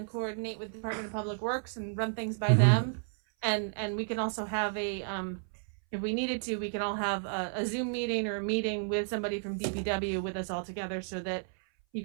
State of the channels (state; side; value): silent; left; 56 dB below the other